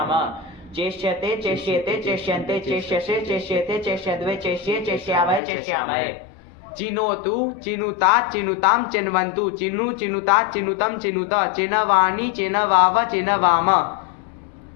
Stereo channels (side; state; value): right; drops out; at 5.4 s